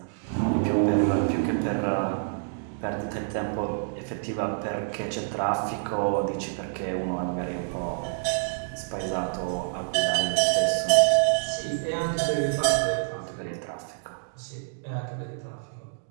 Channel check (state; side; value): silent; left; digital silence